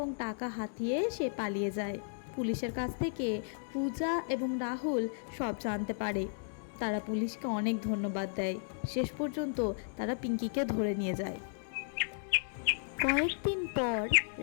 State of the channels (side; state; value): right; silent; digital silence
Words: টাকা হাতিয়ে সে পালিয়ে যায়। পুলিশের কাছ থেকে পূজা এবং রাহুল সব জানতে পারে। তারা পুলিশকে অনেক ধন্যবাদ দেয়। শেষ পর্যন্ত তারা পিঙ্কিকে ধরে নিয়ে যায়। কয়েকদিন পর